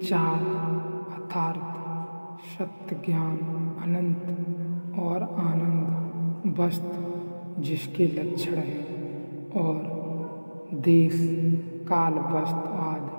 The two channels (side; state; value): both; inverted; correlation -1.00